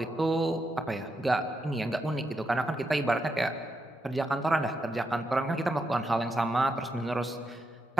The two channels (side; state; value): both; normal; correlation 0.83